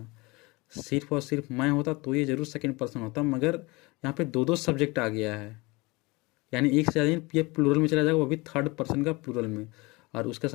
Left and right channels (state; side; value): quieter; right; 24.5 dB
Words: सिर्फ और सिर्फ मैं होता तो ये जरूर सेकंड पर्सन होता। मगर यहाँ पे दो दो सब्जेक्ट आ गया है, यानी एक से ज़्यादा ये प्लूरल में चला जाएगा, वो भी थर्ड पर्सन का प्लूरल में, और उसके